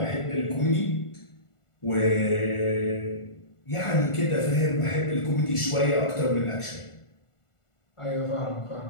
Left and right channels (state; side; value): late; right; 1.4 ms